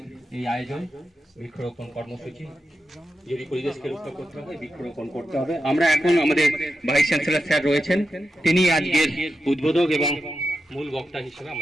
এই আয়োজন, বৃক্ষরোপণ কর্মসূচি। যদি পরিবেশকে রক্ষা করতে হবে, বৃক্ষরোপণ করতে হবে। আমরা এখন আমাদের ভাইস চ্যান্সেলর স্যার রয়েছেন, তিনি আজকের উদ্বোধক এবং মূল বক্তা হিসেবে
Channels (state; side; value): normal; both; correlation 0.89